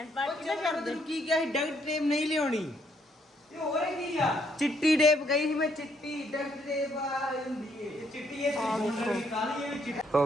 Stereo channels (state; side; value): normal; both; correlation 0.71